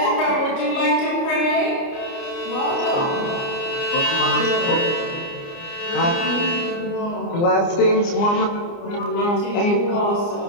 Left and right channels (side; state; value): right; late; 29 ms